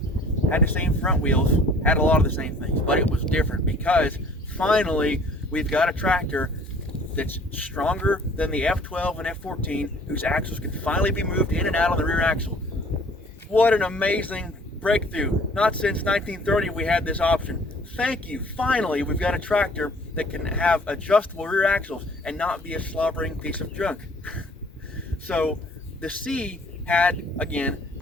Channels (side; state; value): both; normal; correlation 0.53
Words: front wheels, had a lot of the same things, but it was different because finally we've got a tractor that's stronger than the F12 and F14, whose axles can finally be moved in and out on the rear axle. What an amazing breakthrough. Not since 1930 we had this option. Thank you. Finally, we've got a tractor that can have adjustable rear axles and not be a slobbering piece of junk. So the C had, again,